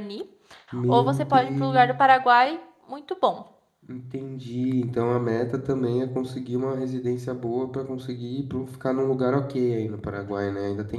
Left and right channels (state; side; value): identical; both; correlation 1.00